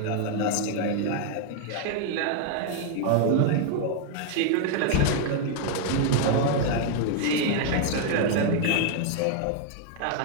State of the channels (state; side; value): different; both; correlation 0.00